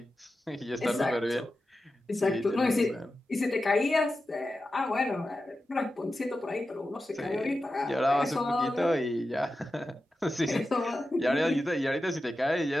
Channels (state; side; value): normal; both; correlation 0.92